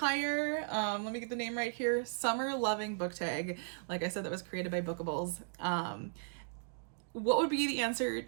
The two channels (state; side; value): silent; left; digital silence